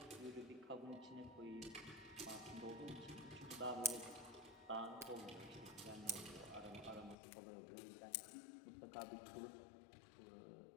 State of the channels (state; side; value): drops out; right; at 7.2 s